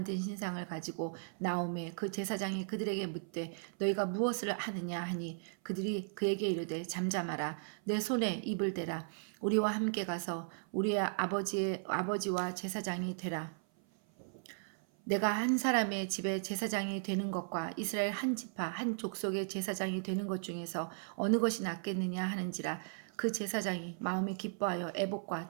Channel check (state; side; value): silent; left; 54 dB below the other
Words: 신상을 가지고 나오매 그 제사장이 그들에게 묻되 너희가 무엇을 하느냐 하니 그들이 그에게 이르되 잠잠하라. 내 손에 입을 대라. 우리와 함께 가서 우리의 아버지와 제사장이 되라. 내가 한 사람의 집에 제사장이 되는 것과 이스라엘 한 지파 한 족속의 제사장이 되는 것 중에서 어느 것이 낫겠느냐 하는지라. 그 제사장이 마음이 기뻐하여 에봇과